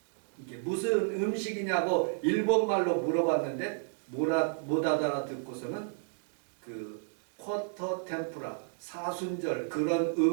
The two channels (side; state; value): left; silent; digital silence